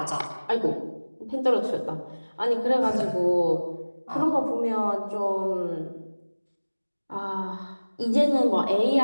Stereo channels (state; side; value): inverted; both; correlation -1.00